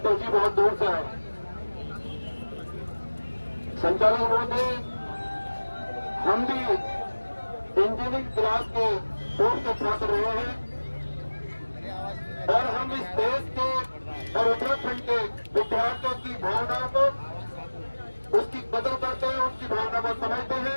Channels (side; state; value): both; inverted; correlation -1.00